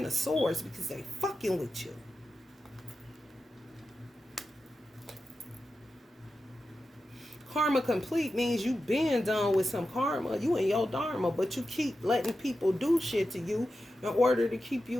of swords because they fucking with you. Karma complete means you been done with some karma. You in your dharma, but you keep letting people do shit to you in order to keep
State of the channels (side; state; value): both; normal; correlation 0.91